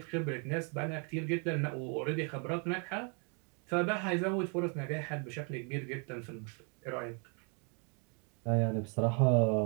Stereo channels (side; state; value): left; quieter; 37.0 dB